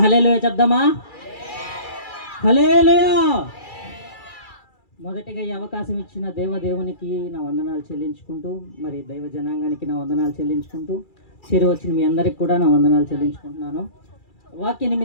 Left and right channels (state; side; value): late; right; 2.3 ms